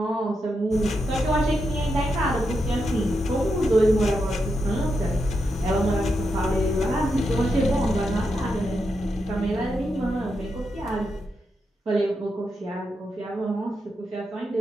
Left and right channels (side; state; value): both; normal; correlation 0.85